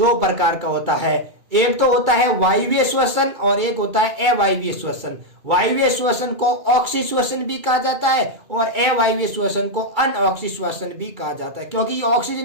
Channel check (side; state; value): left; late; 2.3 ms